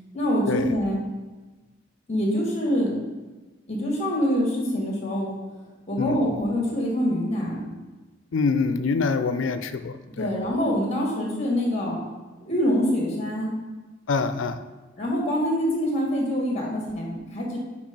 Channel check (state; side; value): normal; both; correlation 0.57